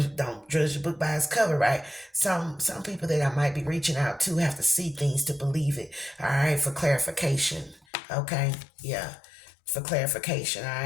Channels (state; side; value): drops out; right; at 7.9 s